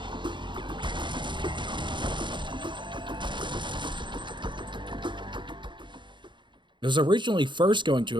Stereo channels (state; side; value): late; left; 0.23 ms